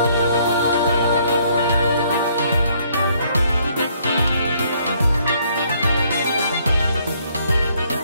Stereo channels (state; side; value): inverted; both; correlation -0.66